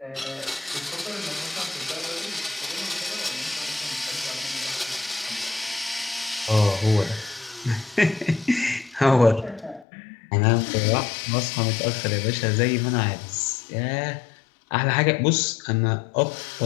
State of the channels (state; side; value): drops out; right; at 9.9 s